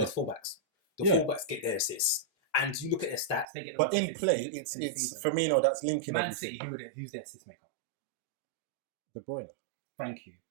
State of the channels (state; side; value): drops out; left; at 3.5 s